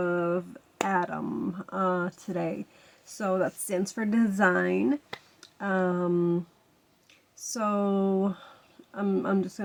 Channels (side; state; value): both; identical; correlation 1.00